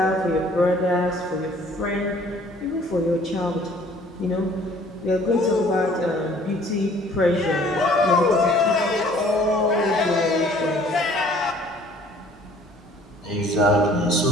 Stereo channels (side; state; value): both; normal; correlation 0.55